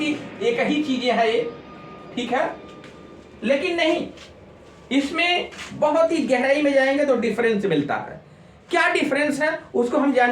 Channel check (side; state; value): both; identical; correlation 1.00